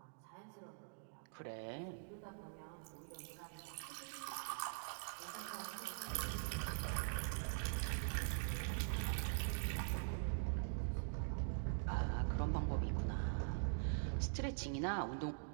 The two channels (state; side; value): silent; left; digital silence